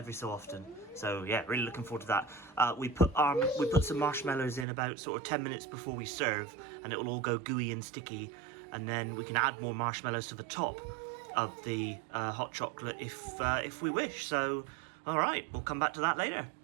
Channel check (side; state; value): left; drops out; at 4.7 s